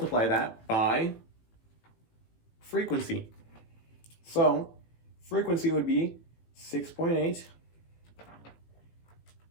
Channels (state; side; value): late; right; 18 ms